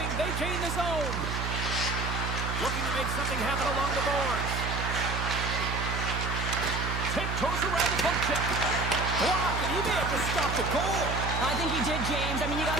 they gain the zone. Looking to make something happen along the boards. Tiptoes around the poke check. Block, and he may have just stopped the goal. I think he did, James. I mean, you got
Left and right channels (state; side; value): noise; right; hum, 2 dB below the sound